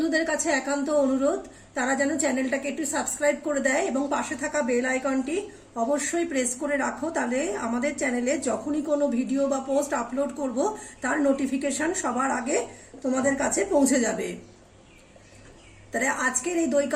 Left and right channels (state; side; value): identical; both; correlation 1.00